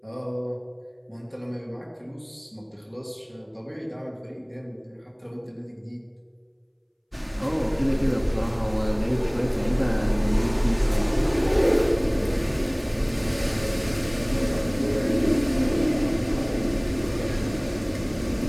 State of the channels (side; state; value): both; identical; correlation 1.00